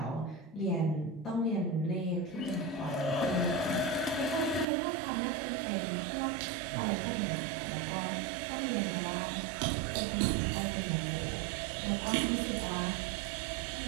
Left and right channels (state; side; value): drops out; left; at 4.7 s